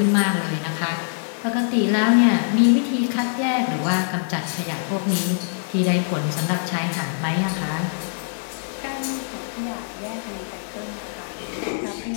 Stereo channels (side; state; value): right; silent; 61 dB below the other